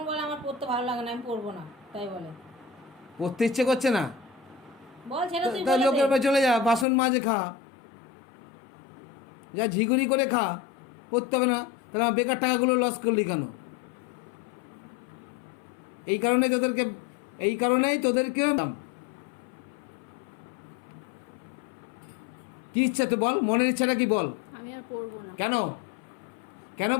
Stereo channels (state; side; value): drops out; right; at 6.9 s